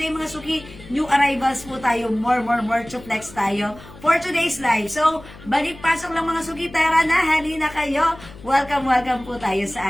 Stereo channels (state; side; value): noise; left; hum, 19 dB below the sound